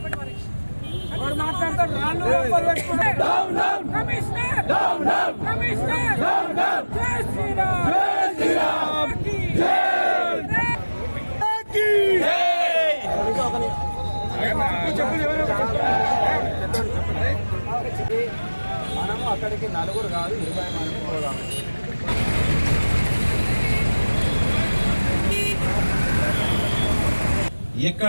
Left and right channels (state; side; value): inverted; both; correlation -1.00